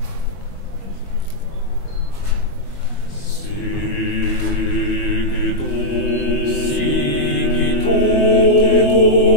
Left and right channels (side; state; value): right; late; 22 ms